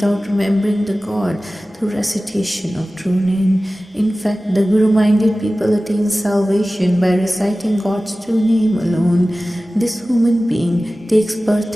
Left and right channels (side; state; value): both; normal; correlation 0.96